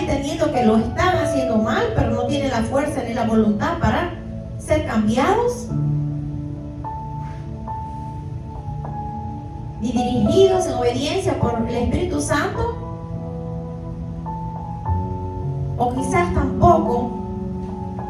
que lo están haciendo mal, pero no tienen la fuerza ni la voluntad para ser cambiados y dirigidos en obediencia por el Espíritu Santo. o quizás tampoco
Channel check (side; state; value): both; identical; correlation 1.00